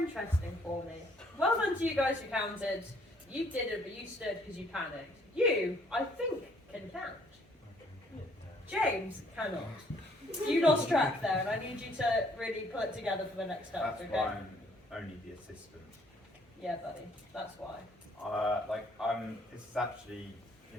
for me. Well done to you guys who counted. You did it, but you stood because you panicked. You, I think, can count. James cannot. You lost track there, and I need you to really pull it together for the next step, That's okay? why I'm only the assistant. Yeah, buddy. That's why. This is actually,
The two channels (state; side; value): normal; both; correlation 0.63